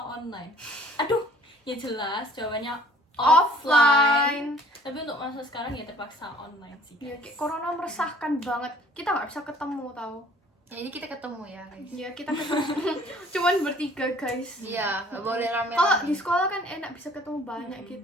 Aduh, ya jelas jawabannya offline. Tapi untuk masa sekarang ya terpaksa online sih. Ya, guys. kayak corona meresahkan banget. Kita nggak bisa ketemu tau. Ya ini kita ketemu ya guys. Ya kita ketemu cuman bertiga guys. Iya, nggak boleh rame. Kalau di sekolah kan enak bisa ketemu banyak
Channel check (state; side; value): normal; both; correlation 0.55